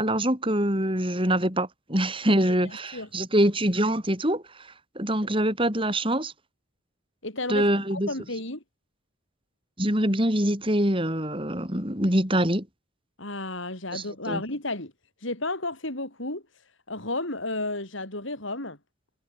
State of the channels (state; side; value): normal; both; correlation 0.59